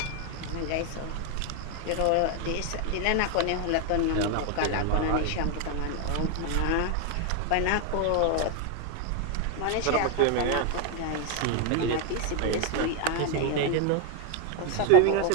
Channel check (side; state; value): both; different; correlation 0.01